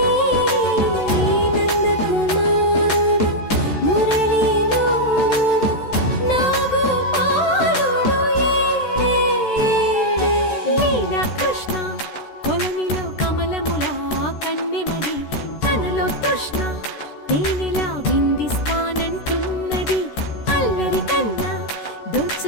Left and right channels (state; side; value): late; right; 14 ms